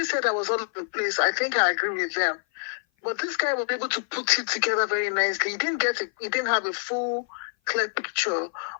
said I was all over the place. I think I agree with them. But this guy was able to put it together very nicely. He didn't have a full, clear picture,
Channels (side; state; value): right; silent; 56 dB below the other